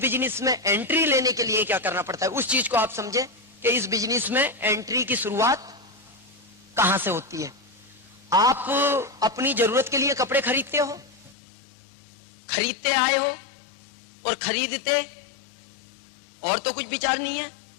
में एंट्री लेने के लिए क्या करना पड़ता है, उस चीज को आप समझे कि इस बिजनेस में एंट्री की शुरुआत कहां से होती है। आप अपनी जरूरत के लिए कपड़े खरीदते हो, खरीदते आए हो और खरीदते, और तो कुछ विचार नहीं है।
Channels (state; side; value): drops out; right; at 11.4 s